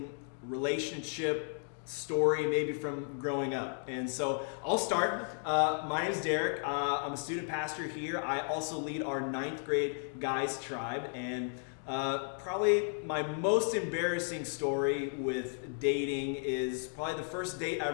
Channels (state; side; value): silent; right; 55 dB below the other